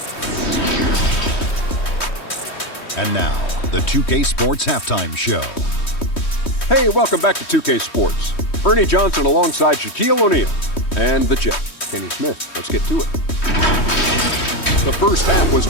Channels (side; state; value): right; late; 3.1 ms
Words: And now, the 2K Sports Halftime Show. Hey, welcome back to 2K Sports. Ernie Johnson alongside Shaquille O'Neal and the Jet, Kenny Smith. Let's get to it. The first half was